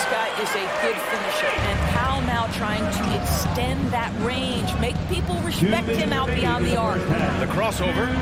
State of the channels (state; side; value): identical; both; correlation 1.00